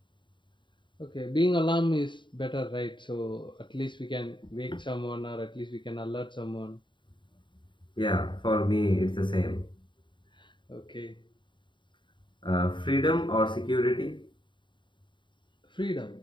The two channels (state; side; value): late; right; 0.23 ms